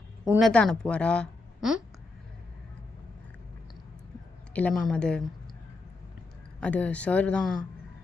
உன்னை தான் அனுப்புவாரா? இல்லை மேம் அது சார் தான்.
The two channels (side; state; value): right; quieter; 3.4 dB